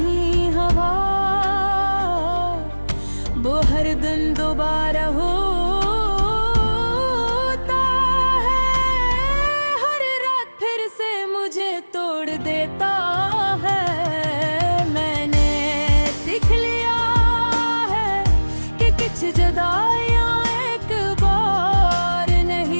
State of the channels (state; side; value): inverted; both; correlation -1.00